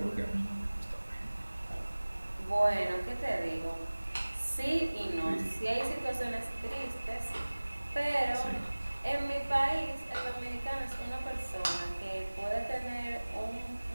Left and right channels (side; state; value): both; inverted; correlation -1.00